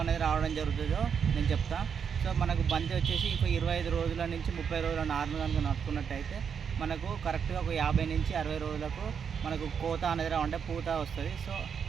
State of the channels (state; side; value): quieter; left; 7.0 dB